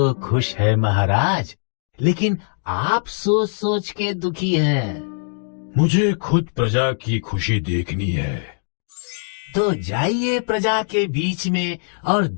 खुश है महाराज, लेकिन आप सोच सोच के दुखी हैं। मुझे खुद प्रजा की खुशी देखनी है। तो जाइए प्रजा के बीच में और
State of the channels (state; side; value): silent; right; 65 dB below the other